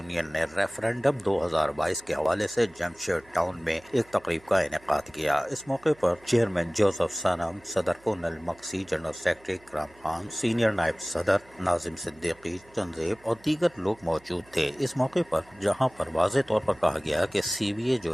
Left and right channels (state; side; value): noise; right; hum, 28 dB below the sound